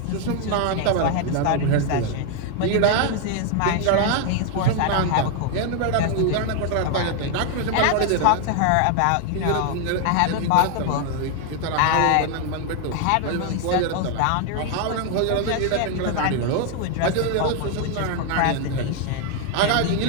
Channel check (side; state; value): both; different; correlation 0.01